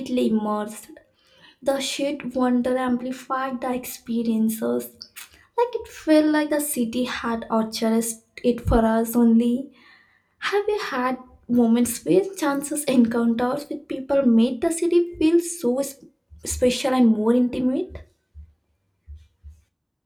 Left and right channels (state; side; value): identical; both; correlation 1.00